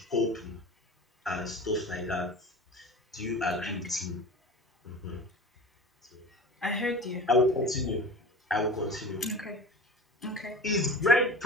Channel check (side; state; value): both; normal; correlation 0.36